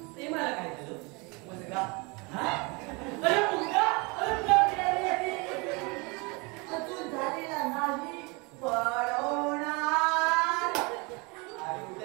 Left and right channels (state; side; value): quieter; left; 28.6 dB